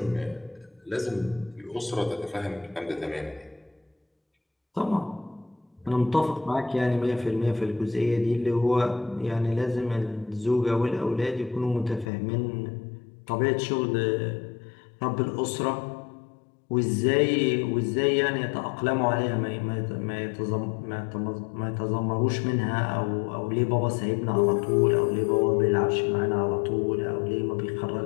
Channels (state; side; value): drops out; right; at 12.1 s